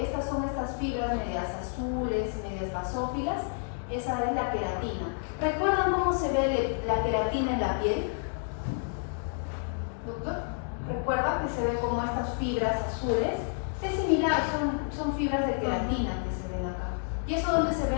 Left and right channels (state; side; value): silent; right; 58 dB below the other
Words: son estas fibras medias azules, medias basófilas, esa es la queratina. ¿Recuerdan cómo se ve la queratina en la piel? ¿Doctor? ¿Recuerda que se ve como estas fibras azules? Es similar, son fibras de queratina que se ven acá. ¿Y eso dónde se